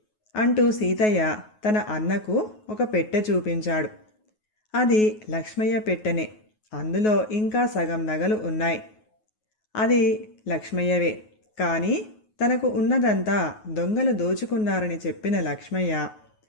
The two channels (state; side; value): late; right; 9.4 ms